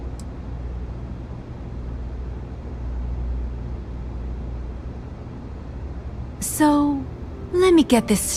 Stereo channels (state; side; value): identical; both; correlation 1.00